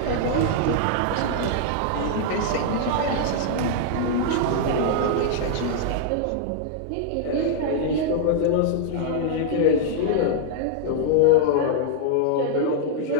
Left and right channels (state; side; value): different; both; correlation -0.01